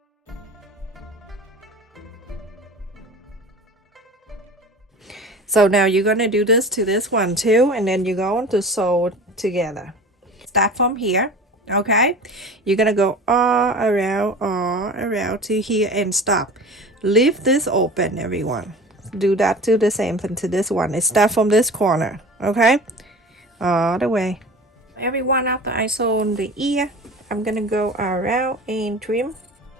So now you're going to do this to this one too, and then you're going to sew together. Start from here, okay? You're going to go all around to here and stop. Leave this open, everyone. Do that to the same thing to this one. It starts from this corner, okay? All the way. Everyone, after I sew on the ear, I'm gonna go around and trim.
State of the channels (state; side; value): normal; both; correlation 0.37